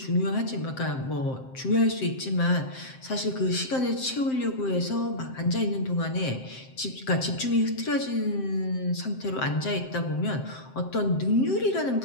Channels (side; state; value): right; late; 7.7 ms